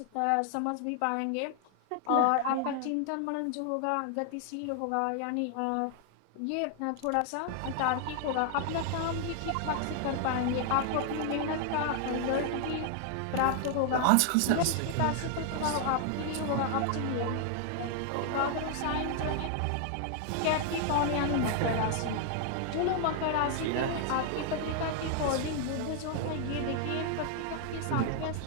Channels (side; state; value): both; different; correlation 0.00